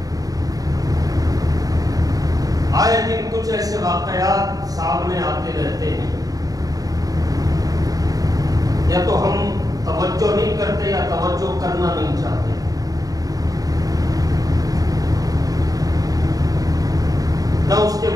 آئے دن کچھ ایسے واقعات سامنے آتے رہتے ہیں. یا تو ہم توجہ نہیں کرتے یا توجہ کرنا نہیں چاہتے. نہ اس کے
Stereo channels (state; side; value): late; left; 0.18 ms